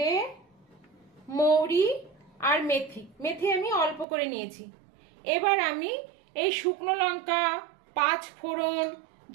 মৌরি আর মেথি আমি অল্প করে নিয়েছি। এবার আমি এই শুকনো লঙ্কা, 5 ফোড়ন,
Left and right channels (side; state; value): left; drops out; at 4.0 s